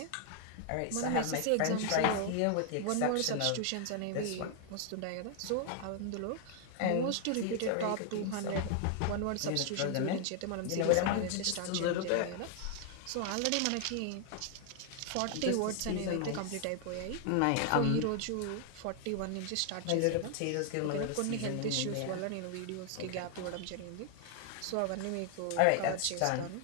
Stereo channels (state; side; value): different; both; correlation 0.00